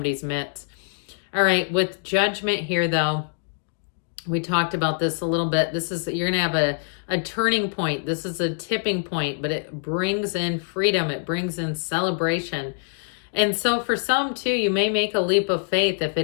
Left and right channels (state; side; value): silent; right; digital silence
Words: midst. All right, with Judgment here, though, we talked about this a little bit. You're going to have a turning point. This is a tipping point, but it brings in freedom. It brings in celebration. And so for some, too, you may make a leap of faith if